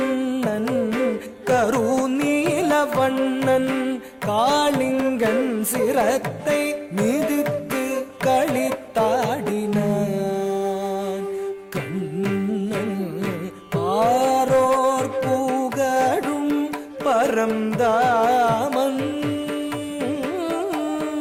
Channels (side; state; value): both; identical; correlation 1.00